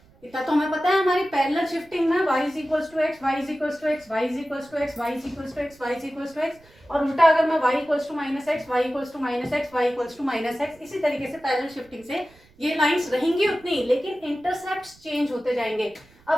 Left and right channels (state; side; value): noise; right; rumble, 29 dB below the sound